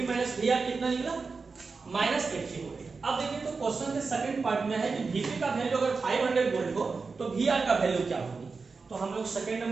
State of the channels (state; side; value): quieter; left; 4.5 dB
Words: माइनस Vr कितना निकला, माइनस 80 वोल्ट। अब देखिए तो क्वेश्चन के सेकंड पार्ट में है कि Vp का वैल्यू अगर 500 वोल्ट हो तो Vr का वैल्यू क्या होगी। तो हम लोग सेकंड